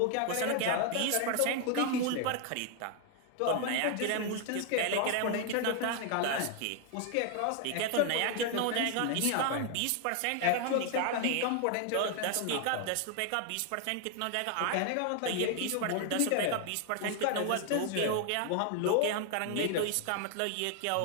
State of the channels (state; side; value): different; both; correlation 0.00